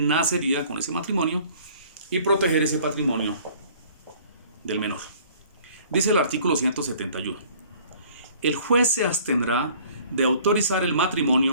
con ese matrimonio y proteger ese patrimonio del menor. Dice el artículo 171. El juez se abstendrá de autorizar el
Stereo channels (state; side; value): inverted; both; correlation -0.53